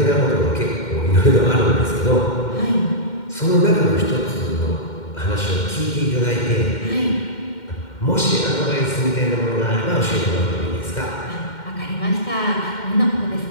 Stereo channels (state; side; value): late; right; 2.1 ms